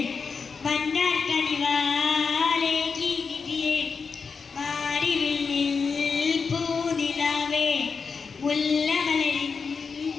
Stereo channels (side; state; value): right; quieter; 5.3 dB